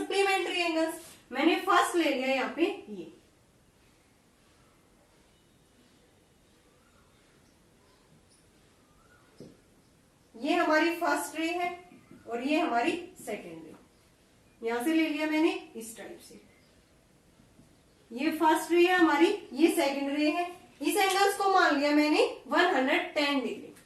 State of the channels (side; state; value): both; identical; correlation 1.00